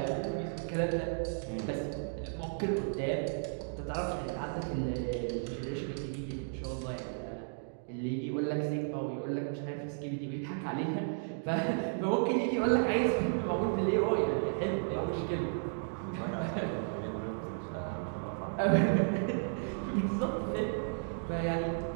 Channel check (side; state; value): left; silent; digital silence